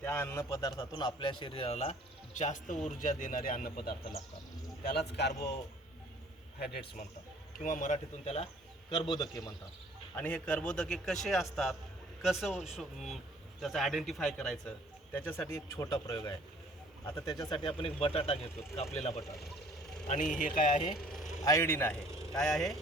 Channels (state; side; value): normal; both; correlation 0.55